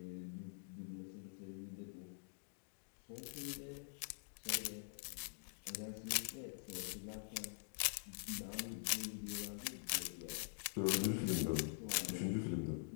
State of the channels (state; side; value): silent; right; digital silence